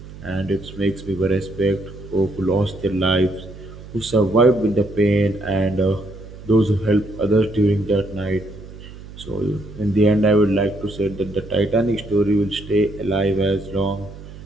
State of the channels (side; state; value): right; noise; hum, 16 dB below the sound